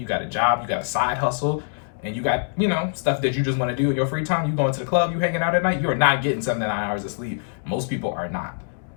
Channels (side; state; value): right; silent; digital silence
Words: got a job, you got a side hustle, and you got, stuff that you just want to do in your free time. You going to the club, you hanging out at night, you're not getting 7 to 9 hours of sleep. Most people are not.